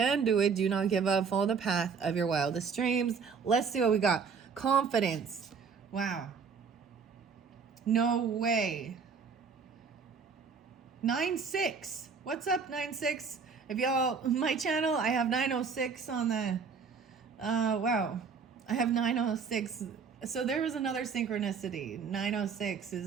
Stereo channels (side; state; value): left; quieter; 5.7 dB